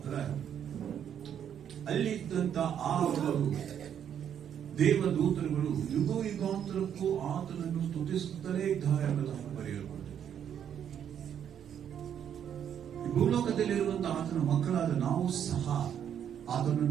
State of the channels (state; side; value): quieter; left; 9.0 dB